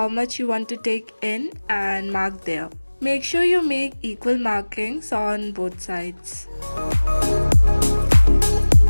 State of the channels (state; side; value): inverted; both; correlation -1.00